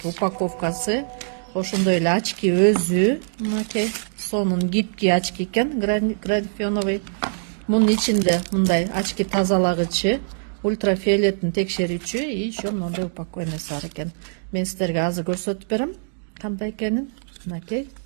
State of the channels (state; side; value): silent; left; digital silence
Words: упаковкасы. Ошондой эле очки өзү, мынакей сонун гибкий очки экен, графеновый. Мунун ичинде мындай очки тазалагычы, ультрафиолеттин текшерүүчү и еще мындай упаковкасы бар экен. Мен сиздерге азыр көрсөтүп берем кандай экенин. Мынакей.